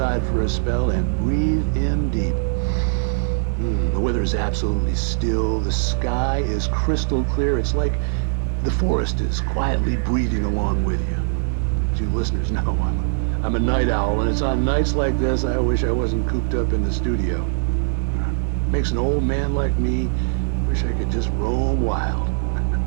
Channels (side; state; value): left; silent; digital silence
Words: for a spell and breathe in deep. The weather is absolutely still. The sky is crystal clear. It's like the forest is quietly breathing along with you. As you listeners know, I'm a night owl, and it's on nights like this I wish I wasn't cooped up in the studio. Makes an old man like me wish I could just roam wild.